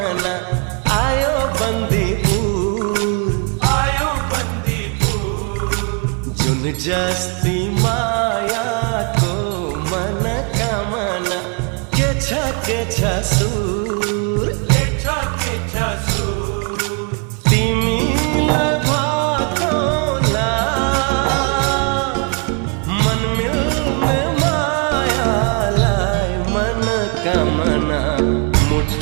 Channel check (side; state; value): left; quieter; 38.1 dB